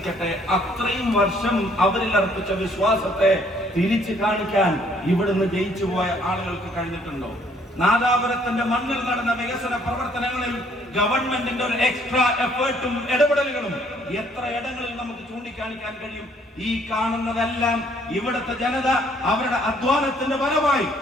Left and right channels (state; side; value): normal; both; correlation 0.63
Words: അത്രയും വർഷം അവരിൽ അർപ്പിച്ച വിശ്വാസത്തെ തിരിച്ചു കാണിക്കാൻ ഇവിടുന്ന് ജയിച്ചു പോയ ആളുകൾക്ക് കഴിഞ്ഞിട്ടുണ്ടോ? നാദാപുരത്തിന്റെ മണ്ണിൽ നടന്ന വികസന പ്രവർത്തനങ്ങളിൽ ഗവൺമെന്റിന്റെ ഒരു എക്സ്ട്രാ എഫേർട്ടും ഇടപെടലുകളും എത്ര ഇടങ്ങളിൽ നമുക്ക് ചൂണ്ടിക്കാണിക്കാൻ കഴിയും? ഈ കാണുന്നതെല്ലാം ഇവിടുത്തെ ജനത അവരുടെ അധ്വാനത്തിന്റെ ഫലമായി